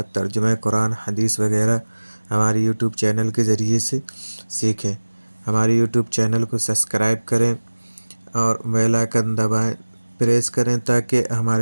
ترجمہ قرآن، حدیث وغیرہ ہماری یوٹیوب چینل کے ذریعے سے سیکھیں۔ ہماری یوٹیوب چینل کو سبسکرائب کریں اور بیل آئکن دبائیں، پریس کریں تاکہ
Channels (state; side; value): inverted; both; correlation -1.00